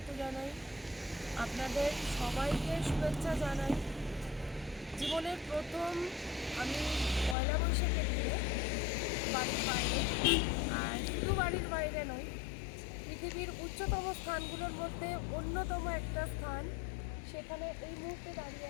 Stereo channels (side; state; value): right; drops out; at 7.4 s